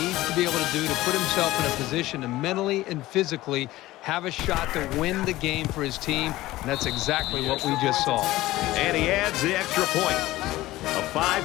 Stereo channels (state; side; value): quieter; right; 17.1 dB